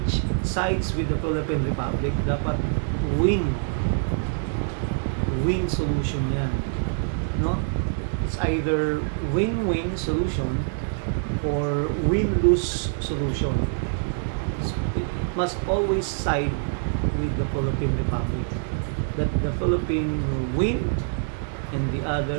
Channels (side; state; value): left; silent; digital silence